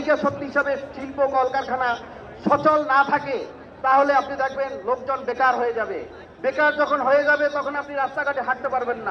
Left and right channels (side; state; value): both; identical; correlation 1.00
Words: শক্তি হিসাবে শিল্প কলকারখানা সচল না থাকে, তাহলে আপনি দেখবেন লোকজন বেকার হয়ে যাবে। বেকার যখন হয়ে যাবে তখন আপনি রাস্তাঘাটে হাঁটতে পারবেন